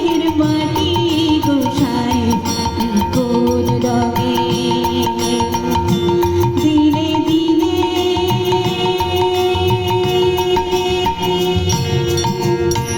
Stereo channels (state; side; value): identical; both; correlation 1.00